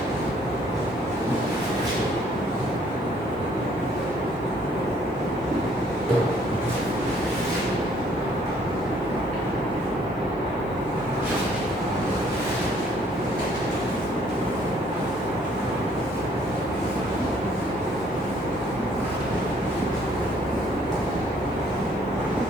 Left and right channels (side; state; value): both; normal; correlation 0.62